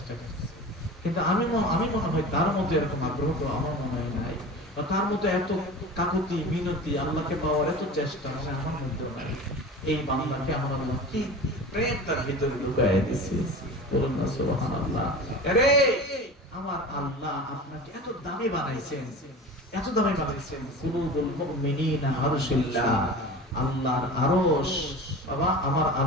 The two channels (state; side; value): normal; both; correlation 0.34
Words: করছে। কিন্তু আমি মনে হয় তার মধ্যে এরকম আগ্রহ তো আমার মনে হয় নাই, বা তার মধ্যে এত কাকুতি মিনতি আল্লাহকে পাওয়ার এত চেষ্টা মানে আমার মধ্যে নাই। এই বান্দাকে আমার আল্লাহ কি প্রেম তার ভিতরে ঢুকায় দিয়েছে, বলুন না সুবহানাল্লাহ। আরে আমার আল্লাহ আপনাকে এত দামি বানাইছেন, এত দামি বানাইছেন। কুলুবুল মুমিনিনা আরশুল্লাহ, আল্লাহর আরশ। বাবা আমার